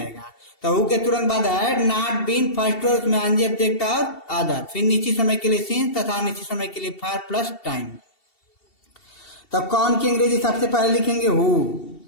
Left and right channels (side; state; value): right; late; 2.7 ms